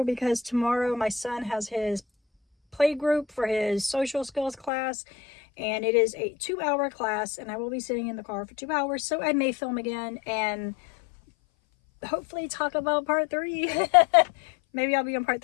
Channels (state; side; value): drops out; right; at 4.7 s